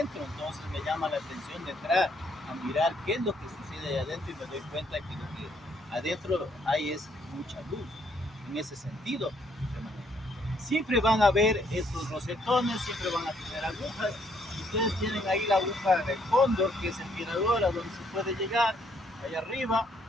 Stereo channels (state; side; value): normal; both; correlation 0.69